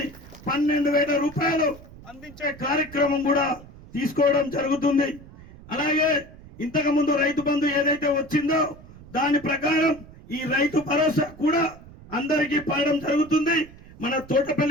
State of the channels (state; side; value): noise; right; rumble, 19 dB below the sound